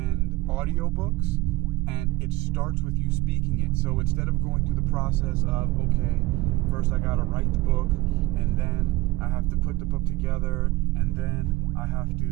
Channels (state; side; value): quieter; left; 19.6 dB